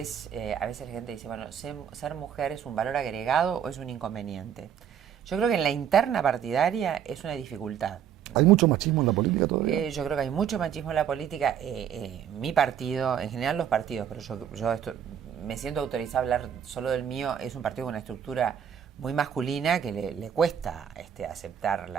a veces la gente dice, bueno, ser mujer es un valor agregado o es un inconveniente. Yo creo que en la interna partidaria es una dificultad. ¿Hay mucho machismo en la política todavía? Yo creo que hay mucho machismo en la política. Mi partido, en general los partidos, pero yo me siento autorizada a hablar solo del mío, es un partido con una estructura muy masculina que le cuesta aceptar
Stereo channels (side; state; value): left; quieter; 8.9 dB